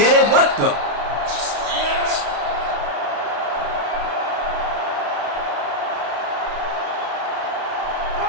it? What the?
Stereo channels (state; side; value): late; left; 35 ms